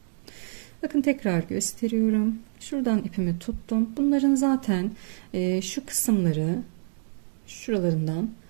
Bakın tekrar gösteriyorum. Şuradan ipimi tuttum. Bunların zaten şu kısımları şuralarından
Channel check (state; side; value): silent; left; digital silence